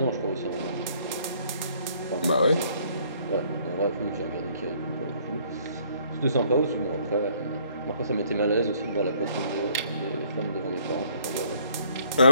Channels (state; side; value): inverted; both; correlation -0.63